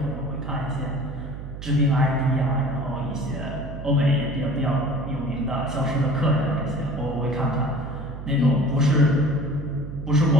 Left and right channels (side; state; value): right; noise; hum, 10 dB below the sound